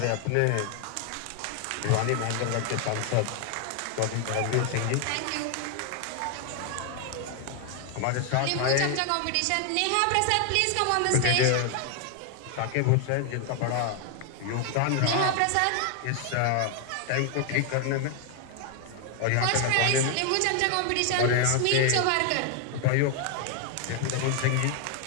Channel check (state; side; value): different; both; correlation 0.00